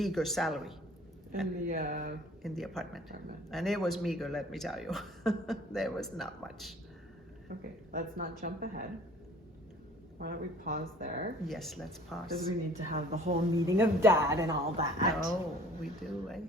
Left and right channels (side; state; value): both; normal; correlation 0.51